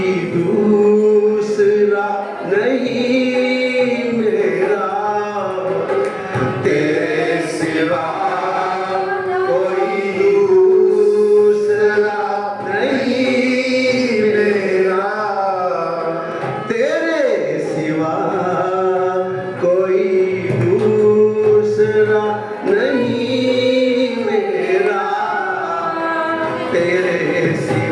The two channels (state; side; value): identical; both; correlation 1.00